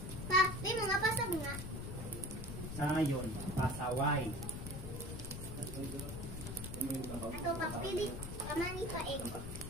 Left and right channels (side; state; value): left; noise; rumble, 7 dB below the sound